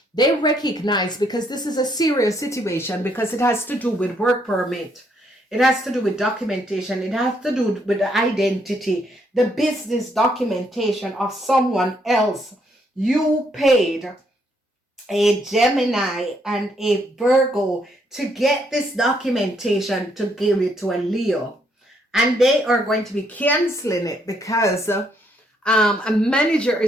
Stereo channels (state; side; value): normal; both; correlation 0.72